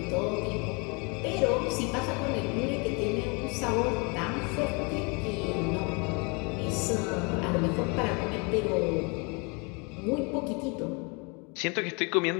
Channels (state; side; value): quieter; right; 31.6 dB